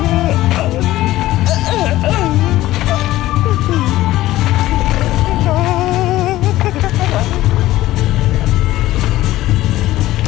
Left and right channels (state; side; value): quieter; right; 15.8 dB